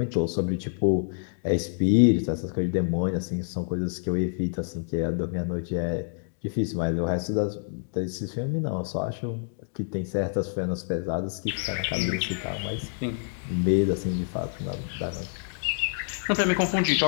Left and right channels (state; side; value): silent; right; digital silence